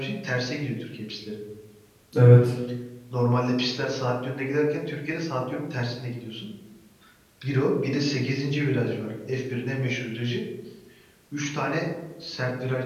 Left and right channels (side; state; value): both; identical; correlation 1.00